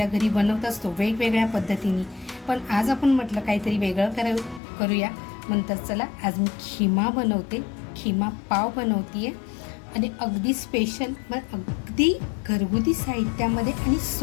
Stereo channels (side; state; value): right; drops out; at 4.6 s